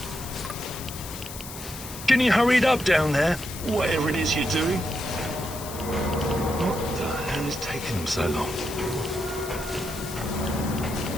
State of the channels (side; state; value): left; noise; hiss, 11 dB below the sound